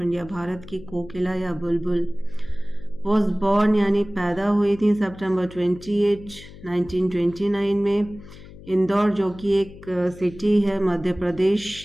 इंडिया, भारत की कोकिला या बुलबुल। वॉज बॉर्न यानी पैदा हुई थी सितंबर 28, 1929 में इंदौर, जो कि एक सिटी है मध्य प्रदेश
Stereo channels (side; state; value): left; noise; hum, 18 dB below the sound